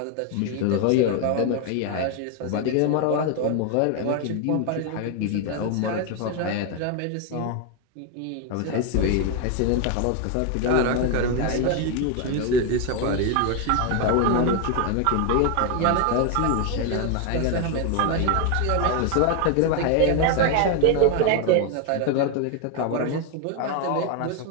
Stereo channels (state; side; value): different; both; correlation 0.01